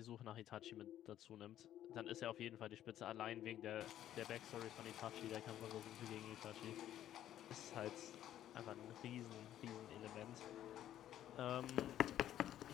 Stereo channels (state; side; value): quieter; right; 11.9 dB